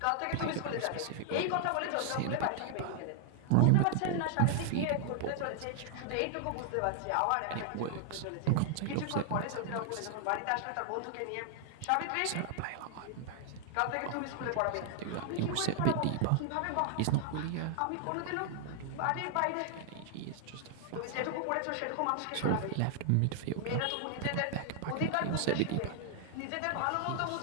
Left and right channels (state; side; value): different; both; correlation 0.00